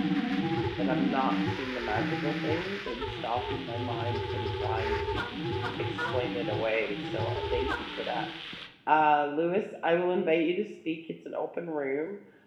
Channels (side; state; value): both; identical; correlation 1.00